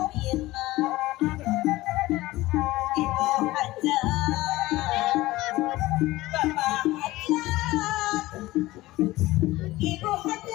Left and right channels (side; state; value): right; quieter; 18.2 dB